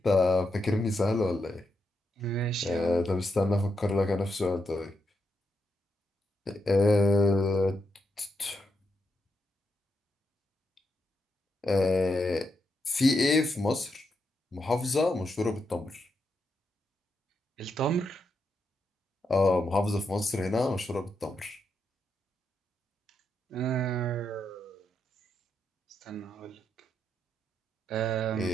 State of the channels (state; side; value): normal; both; correlation 0.82